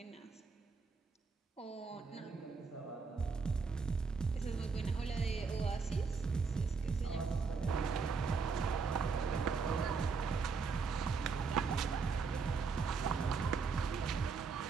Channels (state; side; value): quieter; left; 5.0 dB